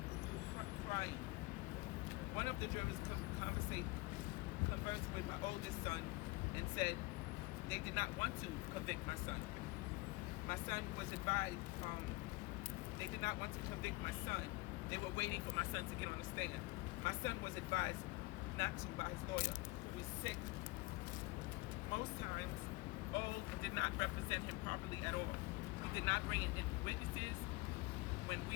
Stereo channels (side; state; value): right; quieter; 22.6 dB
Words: Crying. One of the jurors conversed with my oldest son and said they did not want to convict my son. My son was advised, they did not want to convict my son. They were waiting for my son to get on the stand. My son was advised not to by his lawyer, who was sick. Most times, Old did not represent him properly at all. He did not bring in witnesses when